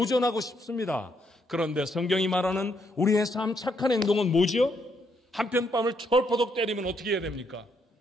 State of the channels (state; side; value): normal; both; correlation 0.75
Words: 싶습니다. 그런데 성경이 말하는 우리의 삶 착한 행동은 뭐죠? 한편 뺨을 철퍼덕 때리면 어떻게 해야 됩니까?